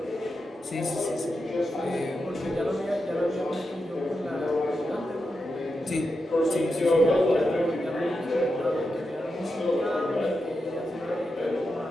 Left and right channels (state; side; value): normal; both; correlation 0.88